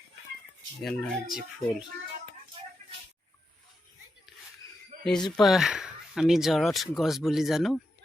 এনাৰ্জি ফুল। এইজোপা আমি জৰত গছ বুলি জানো।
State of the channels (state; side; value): normal; both; correlation 0.86